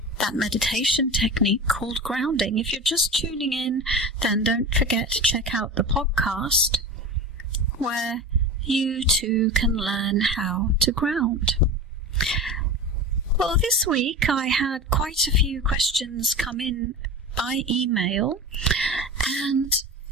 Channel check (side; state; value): both; normal; correlation 0.29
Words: that meditation technique called grounding. If you're just tuning in, then don't forget to check out the podcast where you too can learn how to ground. Well, this week I had quite a few questions come in by email, and